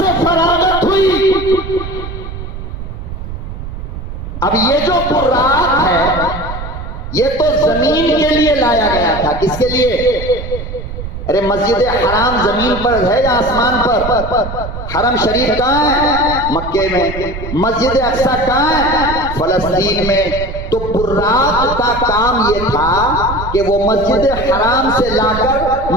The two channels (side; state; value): right; noise; rumble, 8 dB below the sound